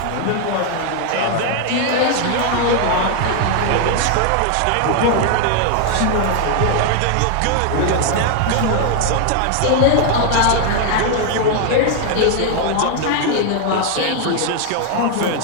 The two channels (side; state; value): both; different; correlation 0.00